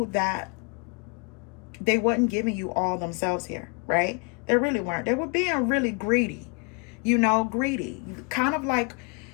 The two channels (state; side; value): quieter; right; 33.3 dB